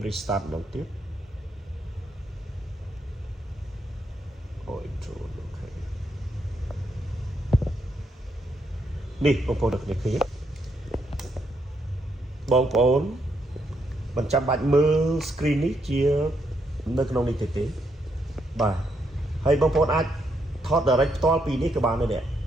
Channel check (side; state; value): both; normal; correlation 0.77